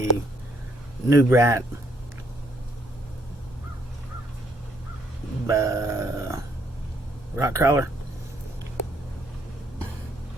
New Bright rock crawler.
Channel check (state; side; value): normal; both; correlation 0.70